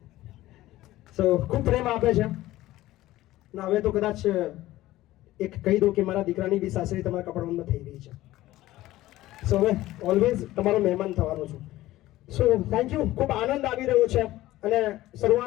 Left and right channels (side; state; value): right; quieter; 16.1 dB